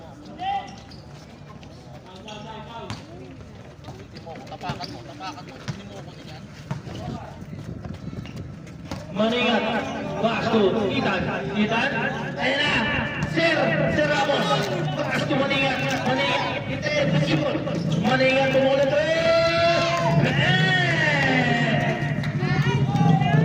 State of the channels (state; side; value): identical; both; correlation 1.00